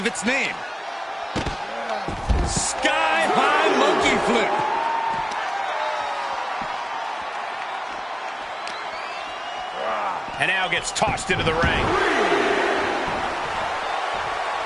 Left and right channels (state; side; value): identical; both; correlation 1.00